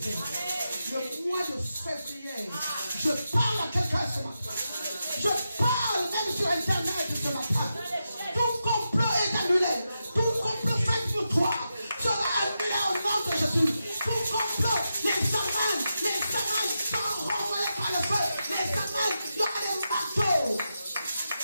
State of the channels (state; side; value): inverted; both; correlation -0.88